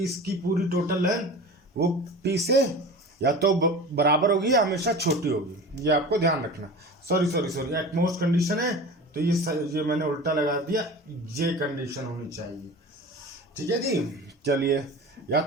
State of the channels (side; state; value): both; normal; correlation 0.35